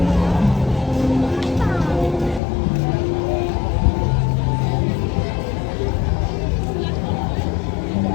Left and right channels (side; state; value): right; drops out; at 2.4 s